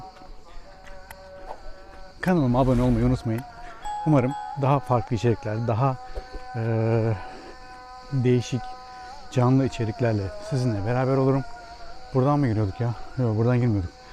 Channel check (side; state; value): both; identical; correlation 1.00